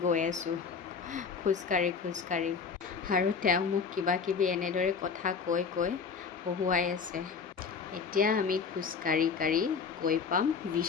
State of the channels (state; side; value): quieter; right; 5.7 dB